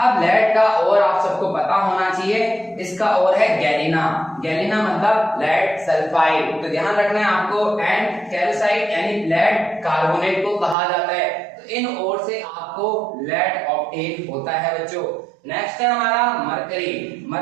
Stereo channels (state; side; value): drops out; left; at 10.8 s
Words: लेड का और आप सबको पता होना चाहिए, इसका और है गैलिना। गैलिना मतलब लेड सल्फाइड। तो ध्यान रखना है आपको। एंड कैल्साइट यानी लेड कार्बोनेट को कहा जाता है। तो इन ओर से आपको लेड ऑब्टेन होता है बच्चों। नेक्स्ट है हमारा मरकरी।